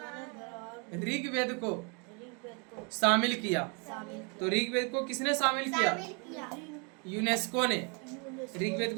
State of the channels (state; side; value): quieter; left; 34.0 dB